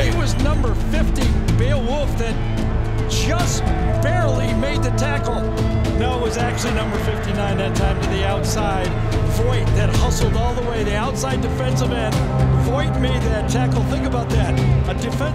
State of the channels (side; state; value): both; identical; correlation 1.00